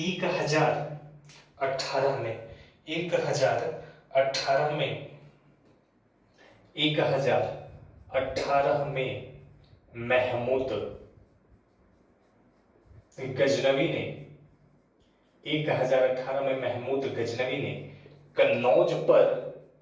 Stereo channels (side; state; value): both; identical; correlation 1.00